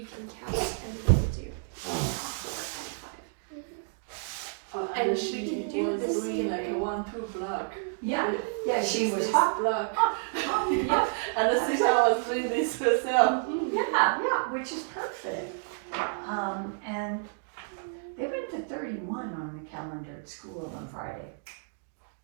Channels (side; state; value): left; silent; digital silence